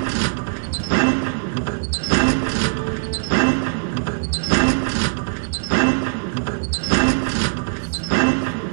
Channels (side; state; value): left; silent; 64 dB below the other